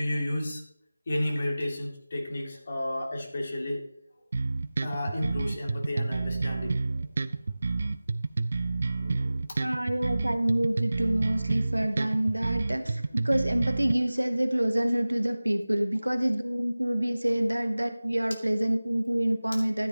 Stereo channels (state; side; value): inverted; both; correlation -0.97